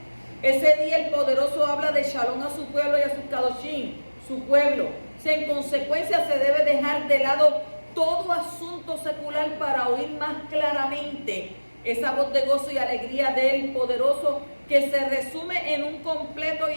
Ese día el poderoso habla de shalom a su pueblo y a sus kadoshim, su pueblo. O sea, en consecuencia se debe dejar de lado todo asunto secular para oír más claramente esa voz de gozo y alegría del poderoso, que se resume en un completo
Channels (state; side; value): inverted; both; correlation -1.00